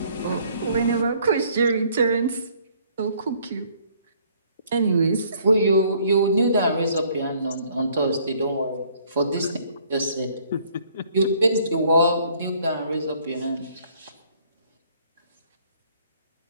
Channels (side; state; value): both; inverted; correlation -0.62